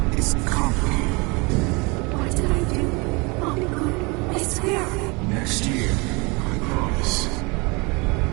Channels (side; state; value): left; quieter; 27.8 dB